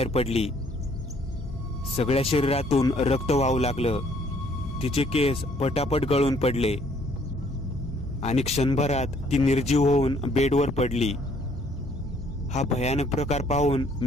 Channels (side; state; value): both; normal; correlation 0.63